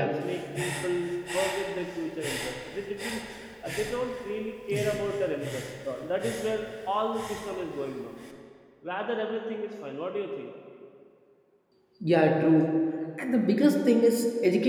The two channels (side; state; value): both; identical; correlation 1.00